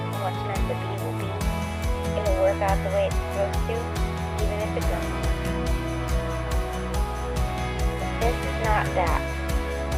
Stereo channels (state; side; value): identical; both; correlation 1.00